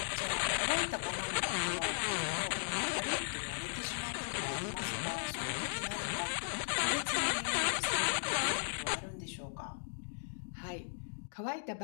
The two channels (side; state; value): right; silent; digital silence